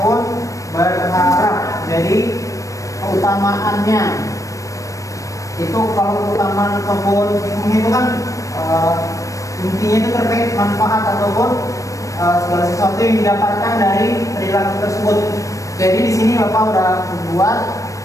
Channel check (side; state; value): right; late; 0.16 ms